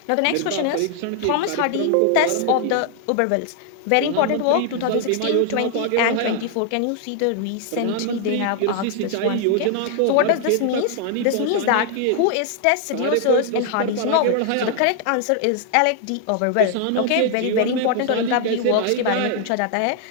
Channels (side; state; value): both; different; correlation 0.00